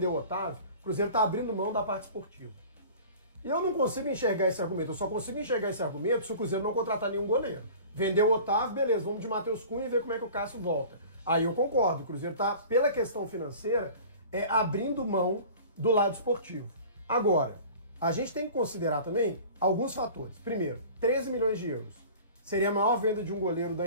o Otávio, o Cruzeiro está abrindo mão da parte esportiva. E eu não consigo enxergar esse argumento, eu só consigo enxergar esse argumento se o Cruzeiro não contratar nenhum goleiro. Vendeu o Otávio, beleza, vamos de Matheus Cunha e ver como é que o Cássio volta. Aí eu concordo, o Cruzeiro está, pela questão financeira, abrindo mão do lado esportivo. Agora, a gente tem que considerar também alguns fatores. Primeiro, 13 milhões de euros. Seria a maior venda de um goleiro da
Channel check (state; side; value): inverted; both; correlation -0.42